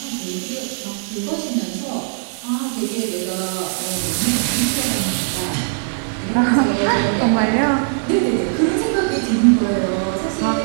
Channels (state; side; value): silent; left; 66 dB below the other